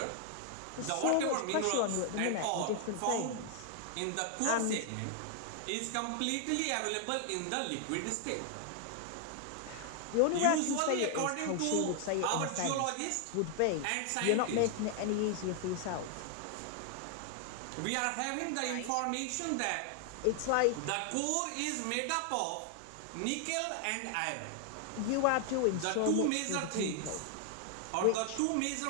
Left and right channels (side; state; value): both; different; correlation 0.00